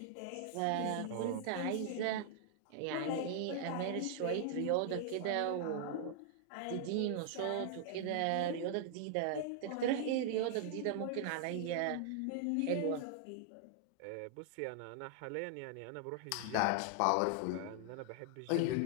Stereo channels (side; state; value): both; different; correlation -0.01